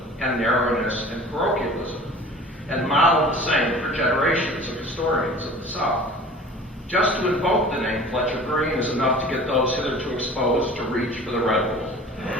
and narrowness and parochialism, and modeled the same for generations of historians of the South. Just to invoke the name Fletcher Green is enough to get those hitherto exposed to reach for the Red Bull.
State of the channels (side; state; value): both; normal; correlation 0.43